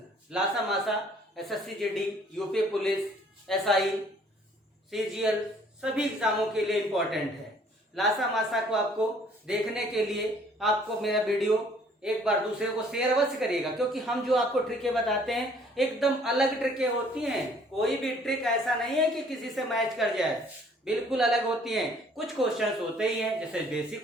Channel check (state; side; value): normal; both; correlation 0.59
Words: लासा मासा SSC GD, UP police, SI, CGL सभी एग्जामों के लिए इम्पोर्टेंट है। लासा मासा को आपको देखने के लिए आपको मेरा वीडियो एक बार दूसरे को शेयर अवश्य करिएगा, क्योंकि हम जो आपको ट्रिकें बताते हैं एकदम अलग ट्रिकें होती हैं। कोई भी ट्रिक ऐसा नहीं है कि किसी से मैच कर जाए, बिल्कुल अलग होती हैं। कुछ क्वेश्चंस होते ही हैं, जैसे बेसिक